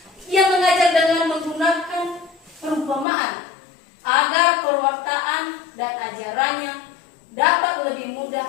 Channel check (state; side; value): drops out; right; at 3.1 s